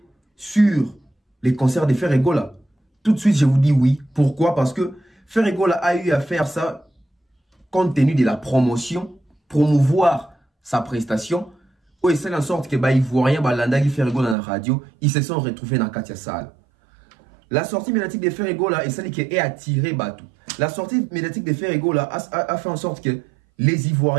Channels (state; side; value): drops out; left; at 14.4 s